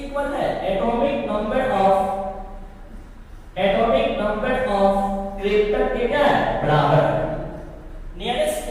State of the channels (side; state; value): both; identical; correlation 1.00